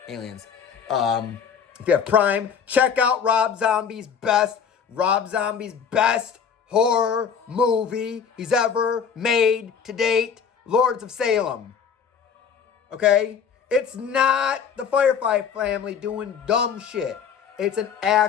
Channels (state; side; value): quieter; right; 7.0 dB